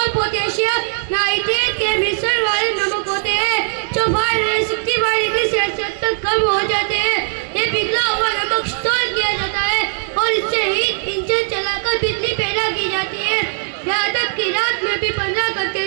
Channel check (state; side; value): silent; left; digital silence